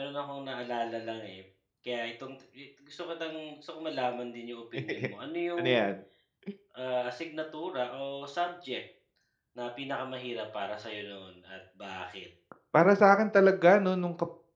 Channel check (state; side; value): identical; both; correlation 1.00